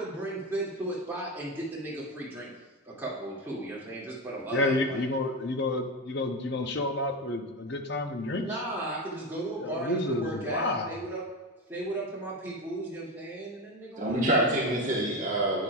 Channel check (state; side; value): normal; both; correlation 0.18